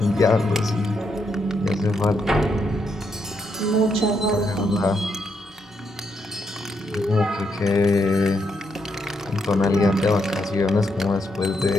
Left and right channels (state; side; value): normal; both; correlation 0.79